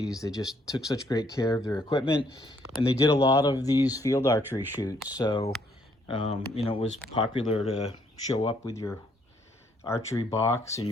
they just took such great care of their equipment, and they did a lot of these field archery shoots. So, you know, it was popular to show up with your archery box and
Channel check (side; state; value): both; normal; correlation 0.68